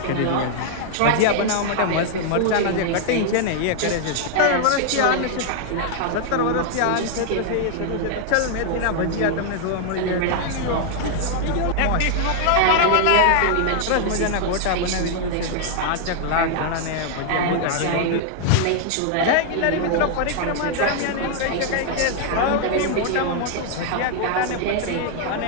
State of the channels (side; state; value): both; different; correlation 0.00